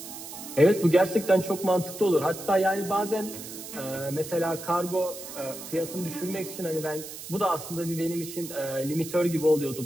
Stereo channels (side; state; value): right; noise; hiss, 11 dB below the sound